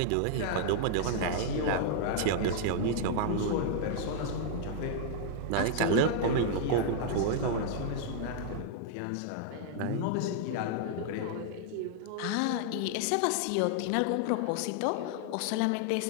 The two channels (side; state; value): both; different; correlation -0.01